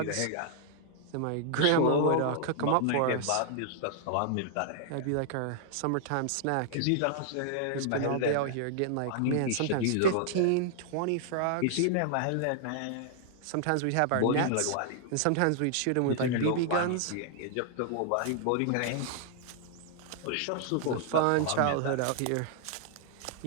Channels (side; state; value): both; different; correlation -0.01